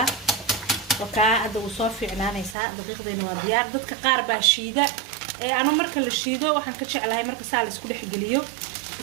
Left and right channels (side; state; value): left; drops out; at 2.6 s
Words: وكا هذا وصافي عنانا يسا دقيقة إنه ديار ضد كقاربة شيدة أنا مركل الشيدة وحن كتش على هاي مركز سالس كل حجليو